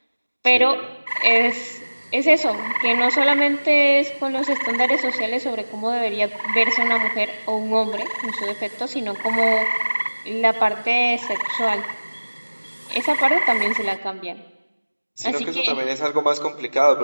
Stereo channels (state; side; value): inverted; both; correlation -1.00